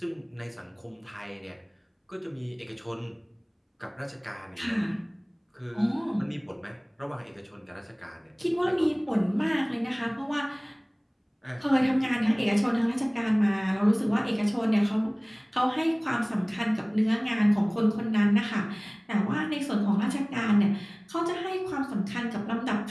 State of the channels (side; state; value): both; identical; correlation 1.00